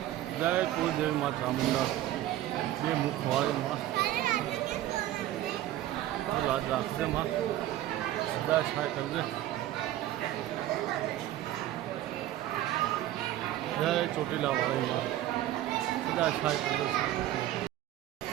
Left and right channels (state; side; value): quieter; left; 13.9 dB